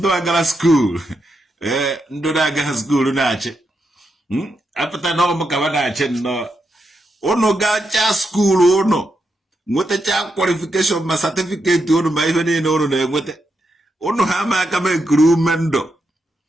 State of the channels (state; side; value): normal; both; correlation 0.84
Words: got a school. No, I got a school in Archie. After that, no, Macavanache, no. Oh, no, gacha school, oh, no. What a child qualification, my certificate, to my even in order with it. Oh, no, how am I coming crew mendo?